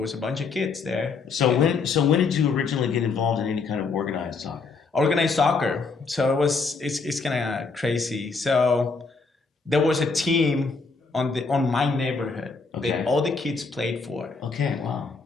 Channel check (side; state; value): right; quieter; 4.5 dB